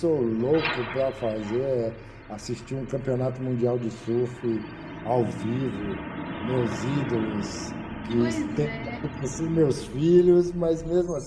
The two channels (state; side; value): identical; both; correlation 1.00